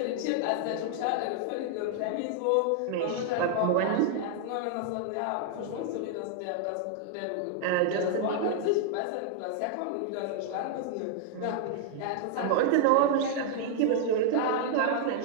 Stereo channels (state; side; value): different; both; correlation -0.01